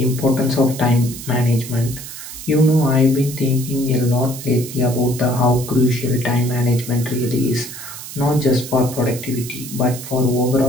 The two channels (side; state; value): right; noise; hiss, 11 dB below the sound